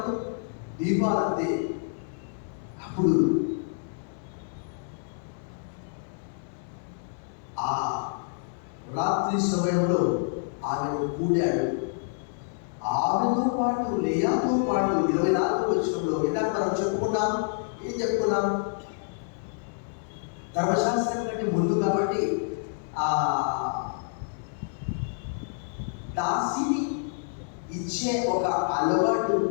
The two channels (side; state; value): right; silent; 59 dB below the other